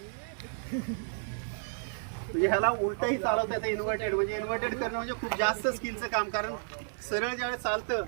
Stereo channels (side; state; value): left; silent; 57 dB below the other